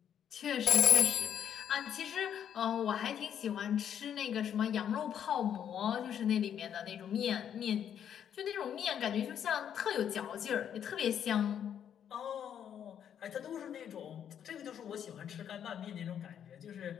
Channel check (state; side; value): quieter; right; 9.1 dB